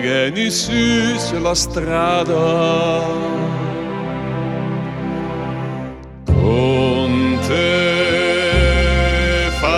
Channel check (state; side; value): identical; both; correlation 1.00